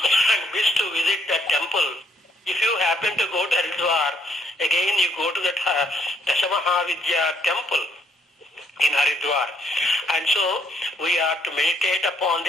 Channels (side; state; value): both; normal; correlation 0.70